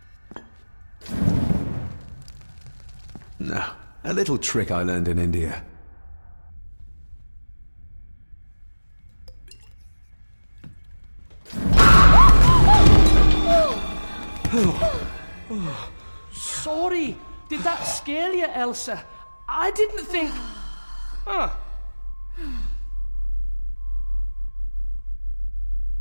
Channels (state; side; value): inverted; both; correlation -1.00